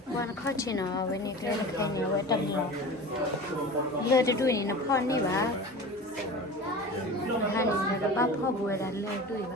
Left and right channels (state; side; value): normal; both; correlation 0.34